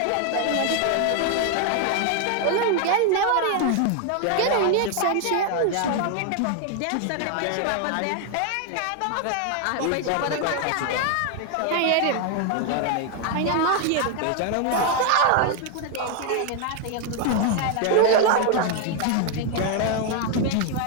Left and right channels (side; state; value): both; different; correlation 0.00